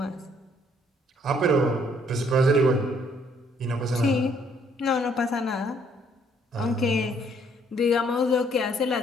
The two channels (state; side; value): normal; both; correlation 0.65